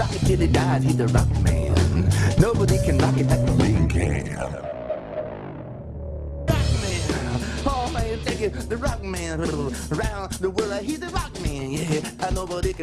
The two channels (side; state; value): both; identical; correlation 1.00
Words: it till he dies, he's the rock man. Nobody can rock it like the man can. Rock man, oh man, take it, the rock man. Around the world, he's the rock man, yeah. And nobody